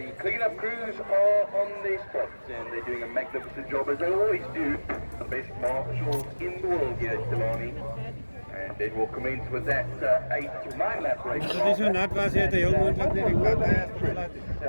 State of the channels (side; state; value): both; inverted; correlation -1.00